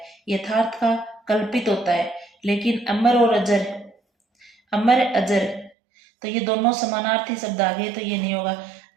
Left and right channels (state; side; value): drops out; left; at 5.7 s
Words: यथार्थ का कल्पित होता है, लेकिन अमर और अजर अमर अजर, तो ये दोनों समानार्थी शब्द आ गए, तो ये नहीं होगा।